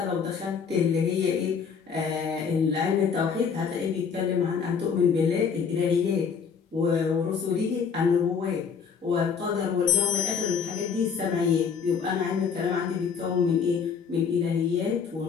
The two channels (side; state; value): right; quieter; 6.3 dB